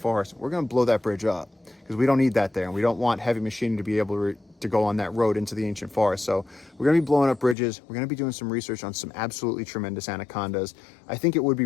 We're going to blow that bridge up because we don't need that there, and we don't want heavy machinery to be able to go on that road into the ancient forest. So we're going to be blowing up bridges. We're going to be doing some research on some absolutely tremendous anacondas. I think it would be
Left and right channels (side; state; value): right; drops out; at 7.6 s